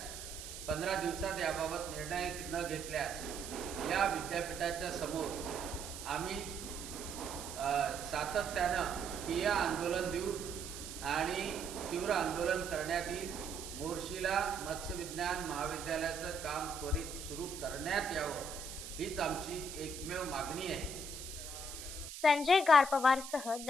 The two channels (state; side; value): noise; right; hiss, 10 dB below the sound